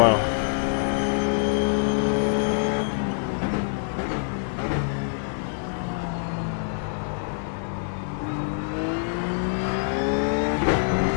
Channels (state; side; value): silent; right; digital silence